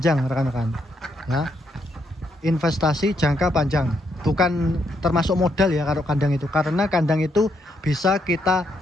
rekan-rekan. Ya, investasi jangka panjang. Bukan termasuk modal ya kalau kandang itu. Karena kandang itu bisa kita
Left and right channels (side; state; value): both; normal; correlation 0.77